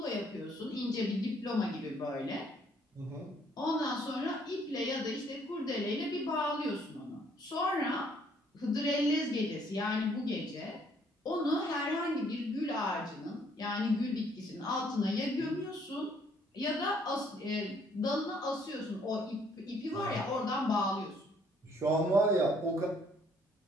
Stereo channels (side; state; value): both; normal; correlation 0.65